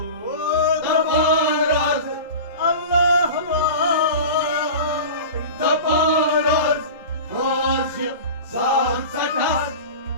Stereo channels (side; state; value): both; inverted; correlation -0.33